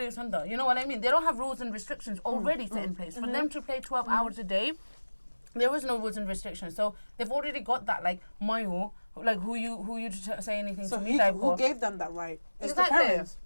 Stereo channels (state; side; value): inverted; both; correlation -1.00